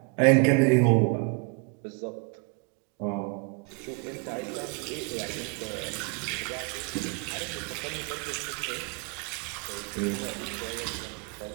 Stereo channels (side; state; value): left; quieter; 31.1 dB